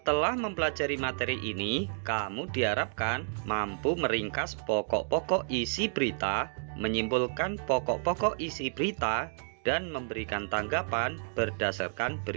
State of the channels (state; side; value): silent; left; digital silence